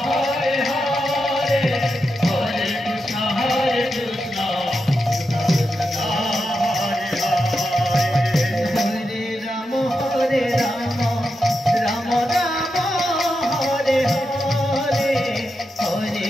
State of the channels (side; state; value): both; normal; correlation 0.87